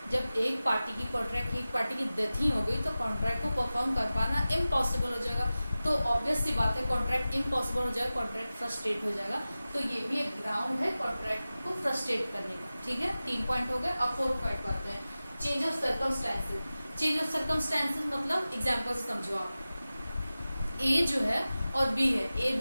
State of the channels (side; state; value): both; inverted; correlation -0.96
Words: जब एक पार्टी की डेथ ही हो गई तो कॉन्ट्रैक्ट को परफॉर्म कर पाना इम्पॉसिबल हो जाएगा। तो ऑब्वियस सी बात है कॉन्ट्रैक्ट इम्पॉसिबल हो जाएगा, कॉन्ट्रैक्ट फ्रस्ट्रेट हो जाएगा। तो ये भी एक ग्राउंड है कॉन्ट्रैक्ट को फ्रस्ट्रेट करने का। ठीक है, 3 पॉइंट हो गए। अब 4th पॉइंट पर आते हैं, change of circumstances. Change of circumstances मतलब एग्जाम्पल से समझो आप, ए जो है और बी है,